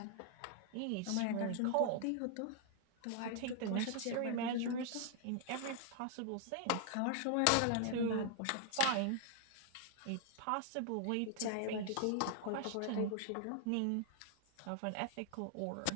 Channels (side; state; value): both; different; correlation 0.00